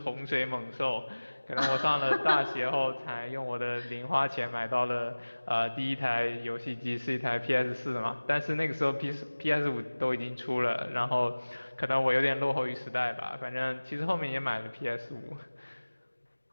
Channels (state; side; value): inverted; both; correlation -1.00